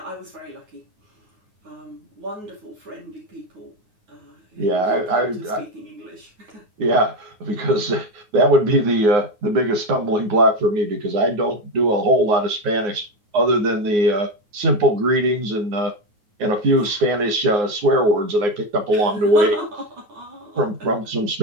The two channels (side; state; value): left; late; 9.7 ms